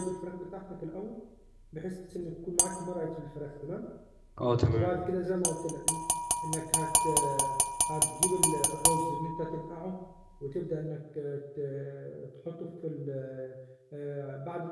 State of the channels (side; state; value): both; identical; correlation 1.00